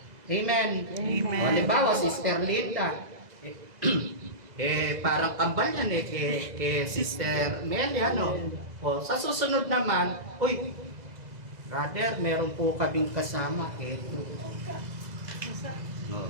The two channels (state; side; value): late; left; 2.0 ms